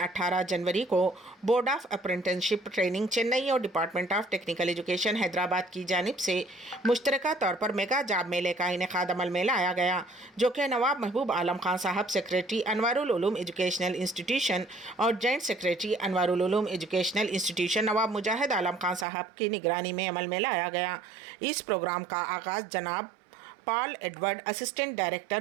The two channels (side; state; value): left; drops out; at 19.1 s